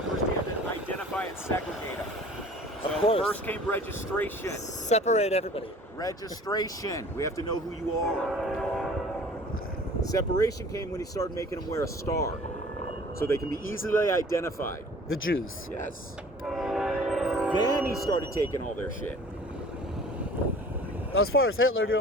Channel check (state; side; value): normal; both; correlation 0.47